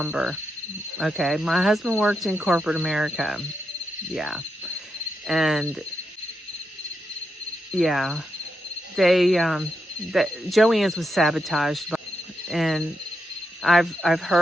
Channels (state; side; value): normal; both; correlation 0.85